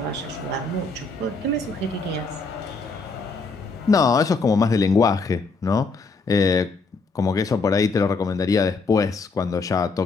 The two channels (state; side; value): quieter; right; 4.1 dB